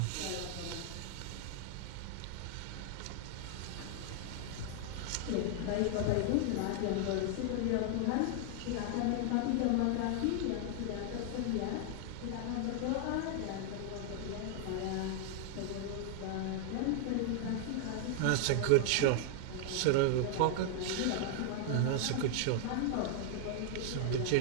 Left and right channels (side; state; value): both; different; correlation 0.00